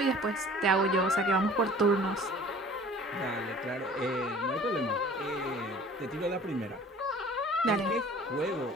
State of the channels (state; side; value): normal; both; correlation 0.48